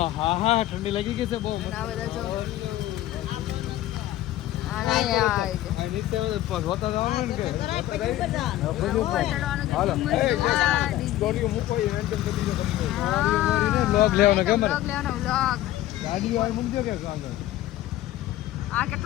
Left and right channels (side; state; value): right; quieter; 14.4 dB